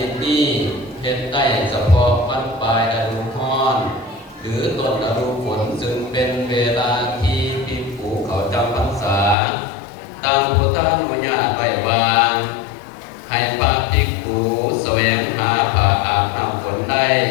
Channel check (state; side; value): drops out; right; at 9.3 s